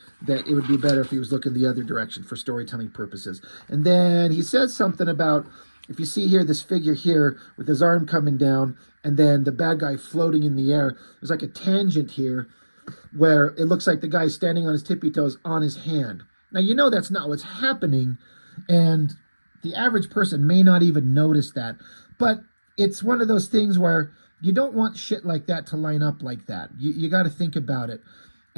that it would be better if he was looking the other direction for storytelling purposes. And then he says something about, if you see here, this figure here with his arm coming down and then the bad guy floating in the air, there's like a tangent here where it looks like the guy's standing on his tippy toes on his hand. Now, that's not what's happening, and the average person may not even notice that, but it's one of those things where you don't want shit like that to line up like that. You got to think about it.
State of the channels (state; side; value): inverted; both; correlation -1.00